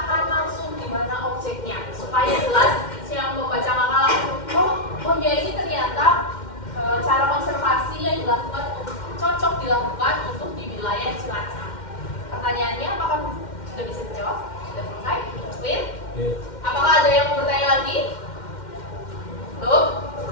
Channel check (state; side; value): late; right; 2.1 ms